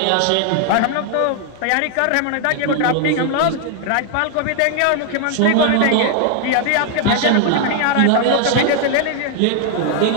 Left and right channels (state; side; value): different; both; correlation 0.00